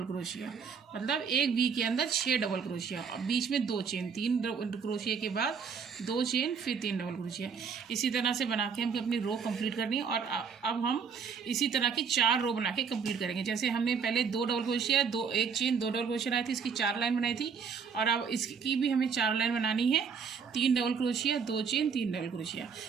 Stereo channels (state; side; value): quieter; left; 6.1 dB